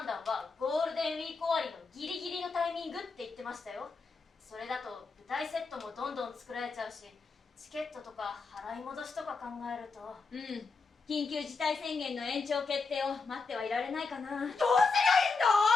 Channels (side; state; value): right; quieter; 4.4 dB